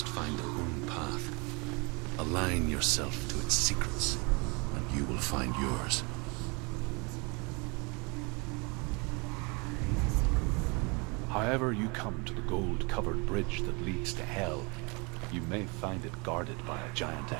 find their own path. Align yourself to its secrets, and you will find yours. However you come to the gold-covered bridge that leads to Hell, you may find it guarded by a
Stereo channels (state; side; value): quieter; left; 30.0 dB